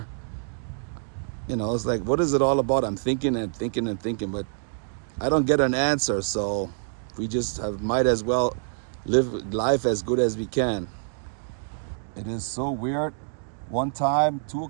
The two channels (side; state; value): left; silent; digital silence